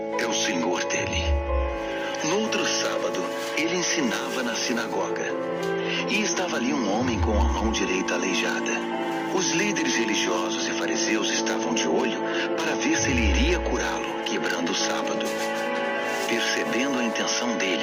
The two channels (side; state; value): both; identical; correlation 1.00